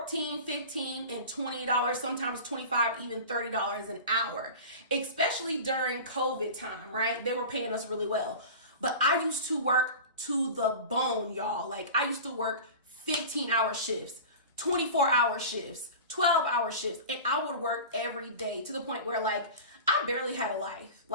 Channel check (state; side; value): inverted; both; correlation -0.34